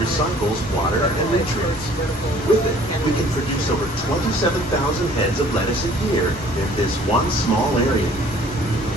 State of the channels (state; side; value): normal; both; correlation 0.54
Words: water and nutrients. With it, we can produce over 27,000 heads of lettuce a year in this one small area.